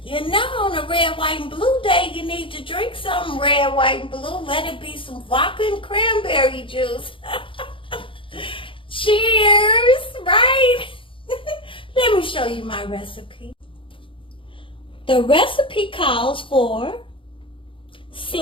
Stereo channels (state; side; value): late; right; 0.25 ms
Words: you know on a red, white, and blue day, you need to drink some red, white, and blue. Let it be some vodka and cranberry juice. Cheers, right? Let me show you my recipe. The recipe calls for